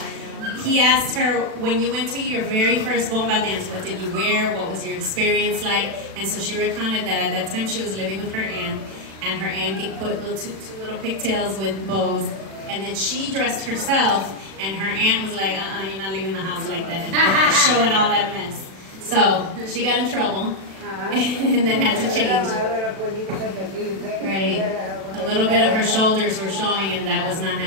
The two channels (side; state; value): left; late; 36 ms